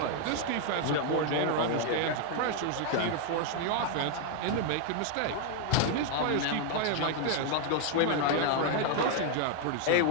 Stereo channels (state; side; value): different; both; correlation 0.00